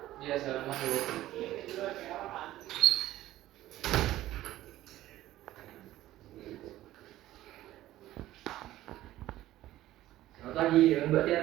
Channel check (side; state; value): left; quieter; 14.9 dB